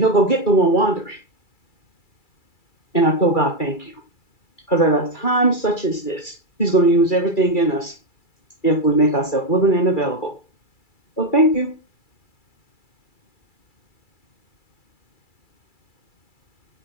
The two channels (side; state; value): right; late; 2.3 ms